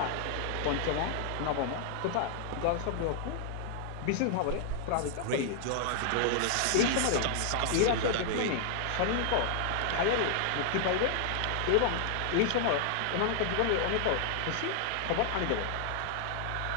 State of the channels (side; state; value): both; different; correlation 0.00